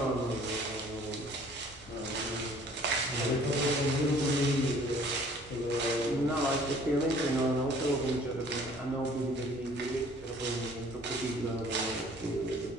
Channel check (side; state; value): both; normal; correlation 0.54